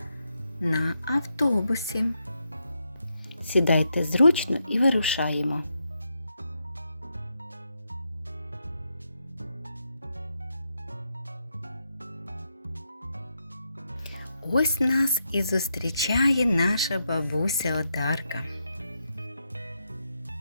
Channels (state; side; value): inverted; both; correlation -0.82